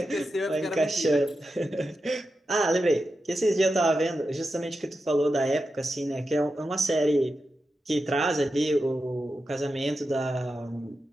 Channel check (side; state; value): both; normal; correlation 0.89